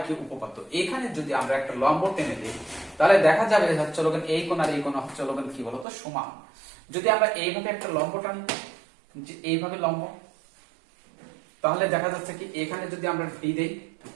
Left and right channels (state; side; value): drops out; left; at 5.9 s